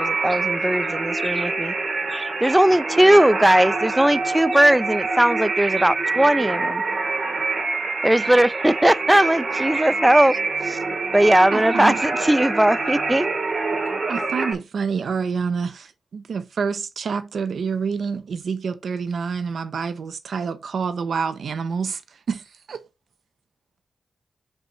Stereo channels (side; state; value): both; normal; correlation 0.97